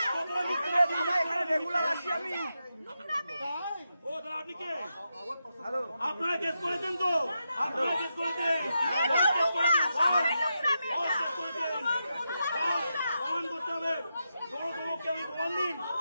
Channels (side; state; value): both; inverted; correlation -0.87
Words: সব বাঙালি দেখছে এখানে রেগুলার আসি আমি ও দাদা আপনি কে আপনারা কেস করেছেন তো আপনারা কেস করেছেন প্রমাণ করতে হবে সমকে আমি প্রমাণ দিন